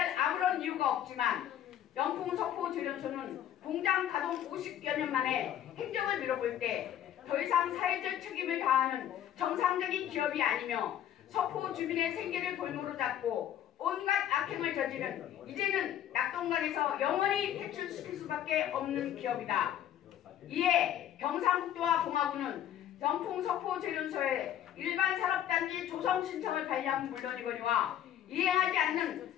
아무런 이유가 없지만 영풍 석포 재련소는 공장 가동 50여 년 만에 행정을 미뤄볼 때 더 이상 사회적 책임을 다하는 정상적인 기업이 아니며 석포 주민의 생계를 볼모로 잡고 온갖 악행을 저지른 이제는 낙동강에서 영원히 퇴출시킬 수밖에 없는 기업이다. 이에 경상북도와 봉화군은 영풍 석포 재련소에 일반 산업단지 조성 신청을 관리하면 물론이거니와 이행하지 않는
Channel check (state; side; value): quieter; right; 10.9 dB